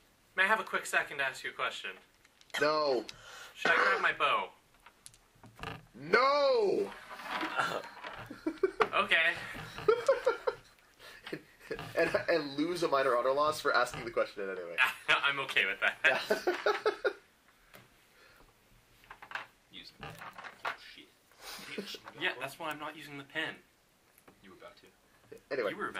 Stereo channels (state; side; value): identical; both; correlation 1.00